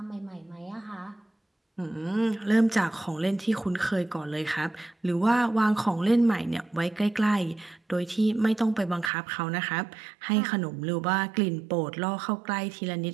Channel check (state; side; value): drops out; left; at 9.1 s